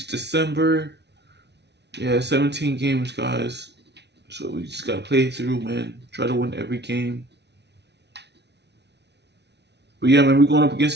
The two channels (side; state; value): left; late; 0.50 ms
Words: December. Yeah, 17 games, guys. So we just gotta play through, man. Try to win every game. But yeah, man, we're going up